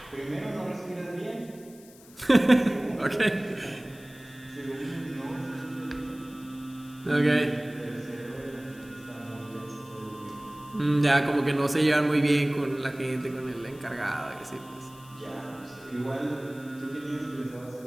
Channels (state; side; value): noise; left; hiss, 23 dB below the sound